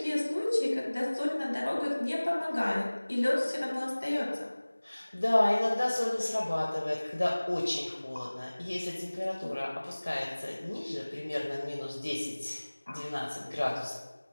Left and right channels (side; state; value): both; inverted; correlation -1.00